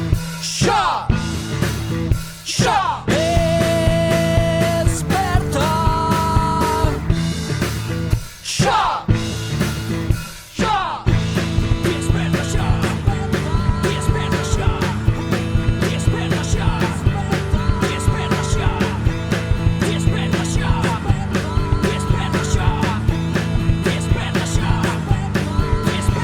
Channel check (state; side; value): identical; both; correlation 1.00